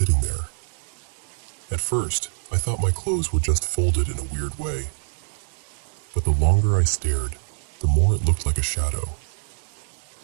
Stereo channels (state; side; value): silent; left; digital silence